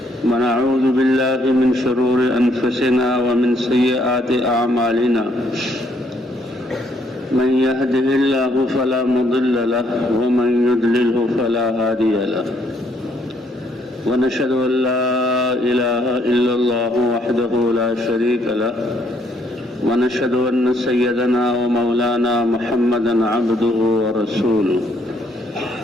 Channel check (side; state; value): both; normal; correlation 0.70